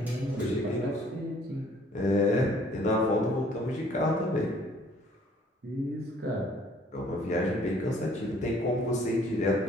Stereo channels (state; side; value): normal; both; correlation 0.59